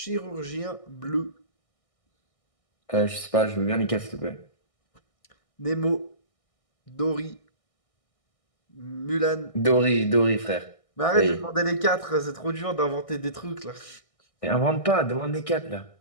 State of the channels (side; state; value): right; late; 1.6 ms